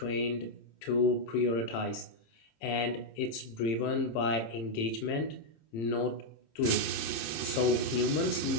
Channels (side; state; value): right; late; 27 ms